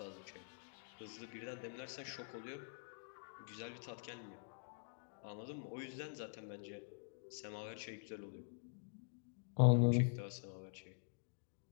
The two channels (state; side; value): silent; right; digital silence